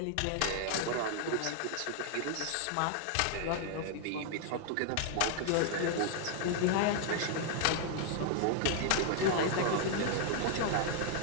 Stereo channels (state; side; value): different; both; correlation 0.00